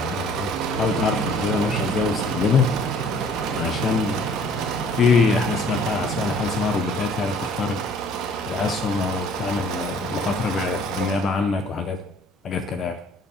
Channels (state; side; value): normal; both; correlation 0.55